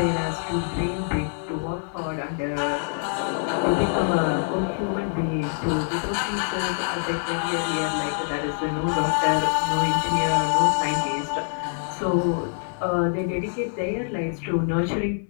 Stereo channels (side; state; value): right; silent; digital silence